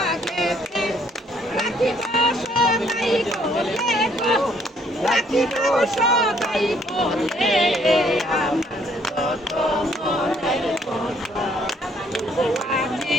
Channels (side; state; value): both; normal; correlation 0.65